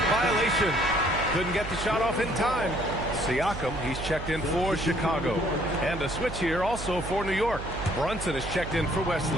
violation. Couldn't get the shot off in time. Siakam, he's checked in for Chicago. And a switch here also for New York. Brunson is checked in for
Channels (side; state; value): right; noise; hum, 9 dB below the sound